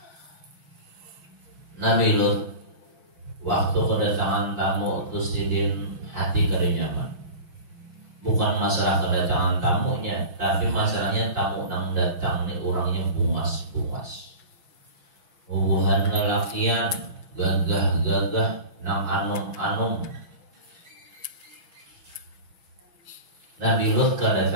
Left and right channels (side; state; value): left; late; 6.1 ms